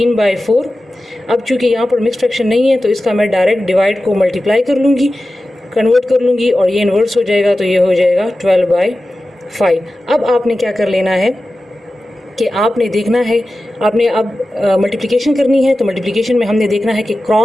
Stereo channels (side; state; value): both; normal; correlation 0.94